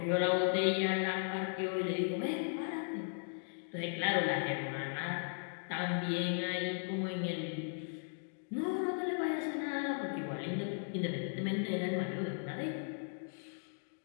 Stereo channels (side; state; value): right; silent; digital silence